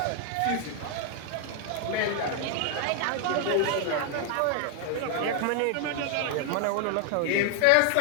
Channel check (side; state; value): both; different; correlation 0.00